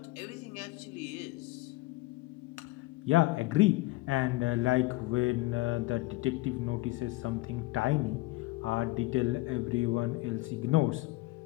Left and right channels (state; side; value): quieter; right; 20.7 dB